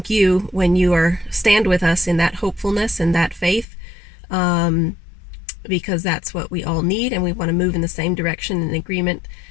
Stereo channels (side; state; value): right; drops out; at 3.7 s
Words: you when you stand with us in that hopefulness and that faith, because that's what we all need, and we want to move in the same direction in agreement,